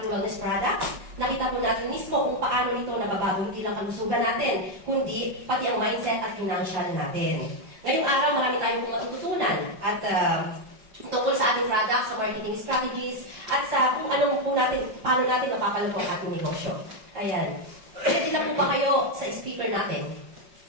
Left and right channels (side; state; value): left; late; 5.4 ms